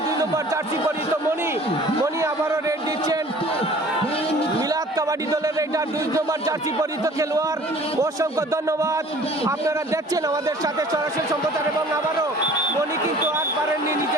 2 নম্বর জার্সি পরিহিত মনি আবারও রেড দিচ্ছেন। মিলাদ কাবাডি দলের রেইডার 2 নম্বর জার্সি পরিহিত খেলোয়াড়। অসংখ্য ধন্যবাদ। আপনারা দেখছেন আমাদের সাথে সরাসরি সম্প্রচার। এবং আবারও মনি কিন্তু আর পারেননি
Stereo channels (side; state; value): both; normal; correlation 0.49